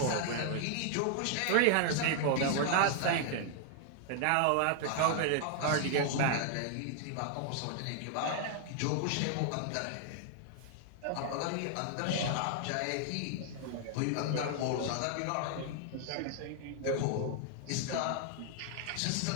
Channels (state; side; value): different; both; correlation 0.00